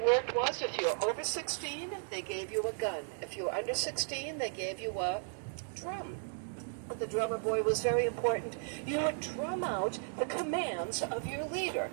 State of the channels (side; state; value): left; silent; digital silence